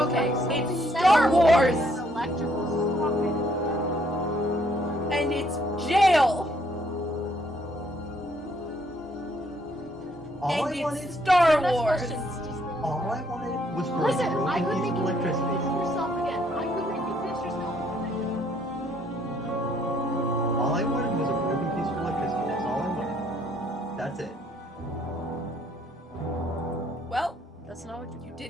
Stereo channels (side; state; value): both; normal; correlation 0.67